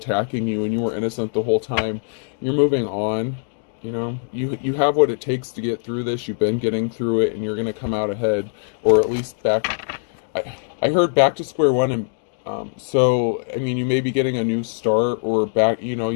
you, and you were innocent the whole time. You're moving on. You know, you have what it takes to get through this. You've been getting through it, and you're going to come out ahead, or at least back. I heard back to square one, and so I mean, you may be getting a new start, or back. You know,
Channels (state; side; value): silent; right; digital silence